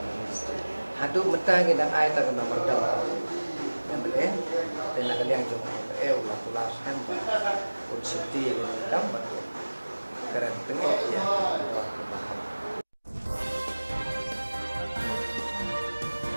minister hadu metang ina ai ta kana mardam yang bele dan nak liang jong la tulas hamba un city ni dam batu keren tengok ya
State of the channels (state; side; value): inverted; both; correlation -1.00